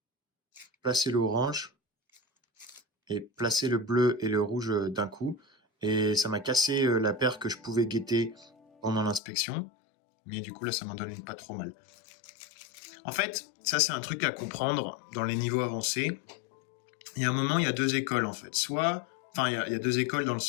Placer l'orange et placer le bleu et le rouge d'un coup. Et ça m'a cassé la paire que je pouvais guetter pendant l'inspection. Mais du coup là ça m'en donne une pas trop mal. En fait, ça c'est un truc à comprendre dans les niveaux avancés. Il y a un moment, il y a deux écoles en fait. Il y a deux écoles dans le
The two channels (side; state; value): right; drops out; at 9.2 s